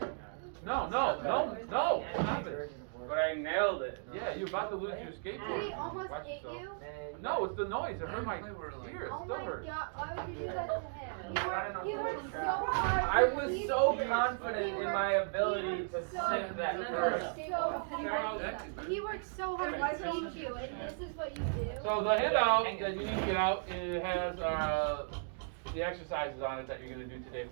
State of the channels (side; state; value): left; silent; digital silence